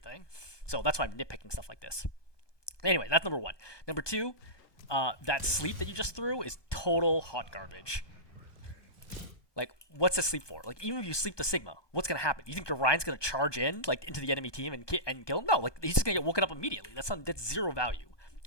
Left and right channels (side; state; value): right; late; 1.2 ms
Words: So that's why I'm nitpicking stuff like this. Anyway, that's number 1. Number 2, that sleep that you just threw is total hot garbage. Like, what's a sleep for? Like, even if you sleep the Sigma, what's gonna happen? You think Ryan's gonna charge in, like, into the enemy team and kill him? No, like, he's just gonna get woken up immediately. That's 0 value.